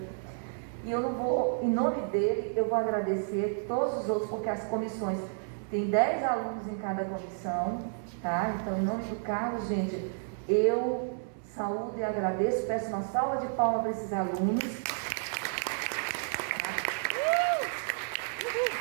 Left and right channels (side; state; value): left; silent; 57 dB below the other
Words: E eu não vou, em nome dele, eu vou agradecer todos os outros, porque as comissões, tem 10 alunos em cada comissão, tá? Então, em nome do Carlos, gente, eu saúdo e agradeço, peço uma salva de palmas para esses alunos.